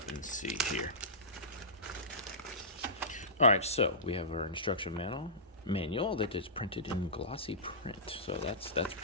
and see here. All right, so we have our instruction manual that is printed in glossy print. So that's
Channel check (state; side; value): normal; both; correlation -0.20